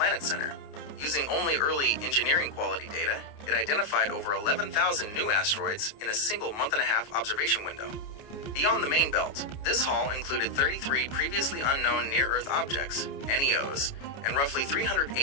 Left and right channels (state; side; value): late; right; 29 ms